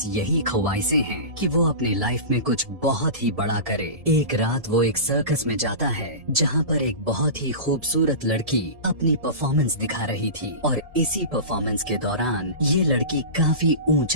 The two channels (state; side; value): late; left; 1.7 ms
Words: यही ख्वाहिशें हैं कि वो अपनी लाइफ में कुछ बहुत ही बड़ा करे। एक रात वो एक सर्कस में जाता है जहाँ पर एक बहुत ही खूबसूरत लड़की अपनी परफॉर्मेंस दिखा रही थी और इसी परफॉर्मेंस के दौरान ये लड़की काफी